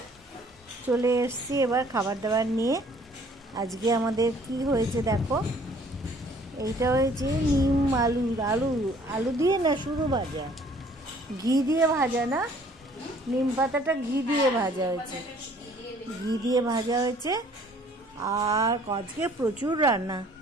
চলে এসেছি এবার খাবার দাবার নিয়ে। আজকে আমাদের কি হয়েছে দেখো, এইটা হয়েছে নিম আলু আলু আলু দিয়ে না শুধু ভাজা, ঘি দিয়ে ভাজা না, নিম পাতাটা ঘি দিয়ে ভাজা হয়েছে, ঘি দিয়ে ভাজা হয়েছে। আর আজকে প্রচুর রান্না।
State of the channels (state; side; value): normal; both; correlation 0.57